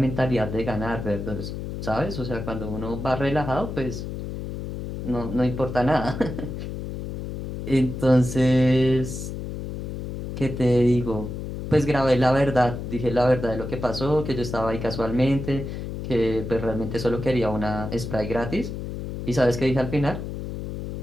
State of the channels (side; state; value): left; noise; hum, 6 dB below the sound